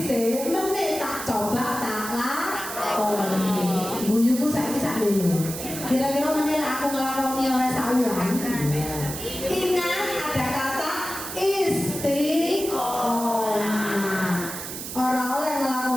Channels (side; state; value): right; noise; hiss, 8 dB below the sound